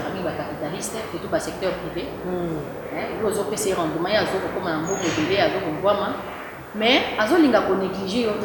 mingi ba capitaliste surtout ba secteur privé yo zo pese rendement ya zo ko na mbongo délai azo ko ngwama mais azo linga ko négliger yo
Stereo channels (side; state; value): both; identical; correlation 1.00